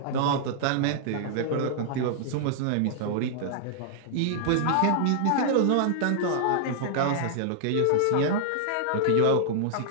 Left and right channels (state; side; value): different; both; correlation -0.01